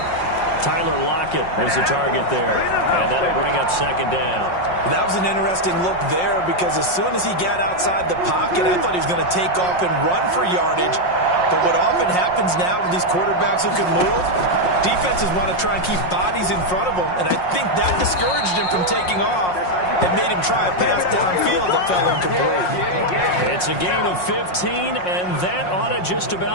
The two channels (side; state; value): right; late; 5.5 ms